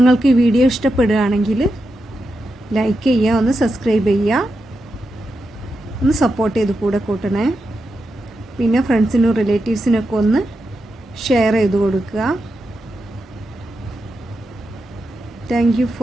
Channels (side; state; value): both; normal; correlation 0.87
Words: ഈ വീഡിയോ ഇഷ്ടപ്പെടുകയാണെങ്കിൽ ലൈക്ക് ചെയ്യുക, ഒന്ന് സബ്സ്ക്രൈബ് ചെയ്യുക, ഒന്ന് സപ്പോർട്ട് ചെയ്ത് കൂടെ കൂട്ടണേ. പിന്നെ ഫ്രണ്ട്സിനും റിലേറ്റീവ്സിനൊക്കെ ഒന്ന് ഷെയർ ചെയ്ത് കൊടുക്കുക. Thank you